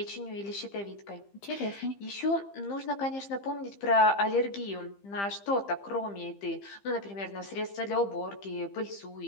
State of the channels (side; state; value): right; late; 15 ms